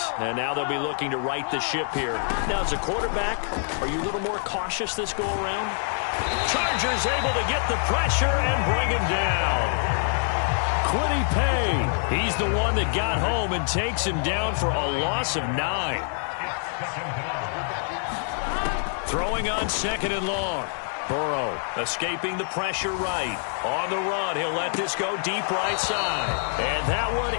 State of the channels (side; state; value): right; silent; 61 dB below the other